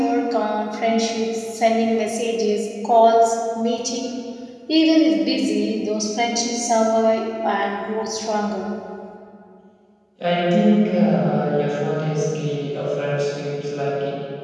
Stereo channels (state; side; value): identical; both; correlation 1.00